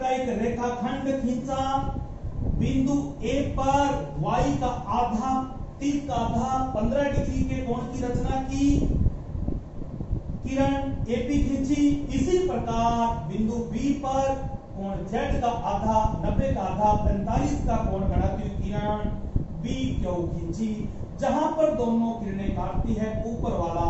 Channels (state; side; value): identical; both; correlation 1.00